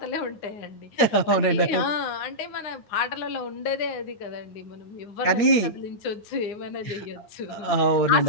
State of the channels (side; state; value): right; late; 8.8 ms